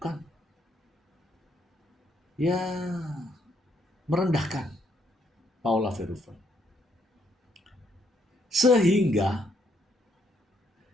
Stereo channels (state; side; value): normal; both; correlation 0.72